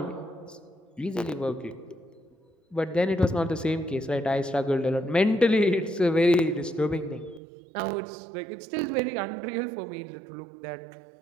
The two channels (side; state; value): left; drops out; at 7.4 s